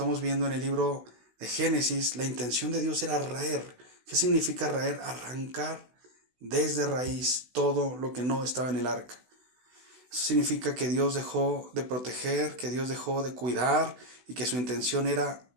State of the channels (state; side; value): late; left; 16 ms